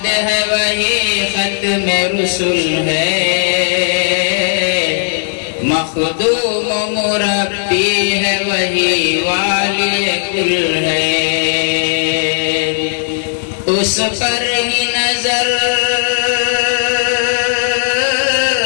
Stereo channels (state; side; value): silent; right; digital silence